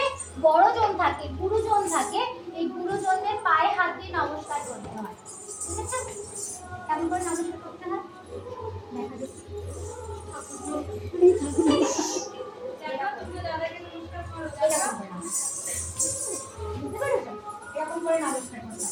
বড়জন থাকে, গুরুজন থাকে, এই গুরুজনদের পায়ে হাত দিয়ে নমস্কার করতে হয়। ঠিক আছে? কেমন করে নমস্কার করতে হয়?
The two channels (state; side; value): identical; both; correlation 1.00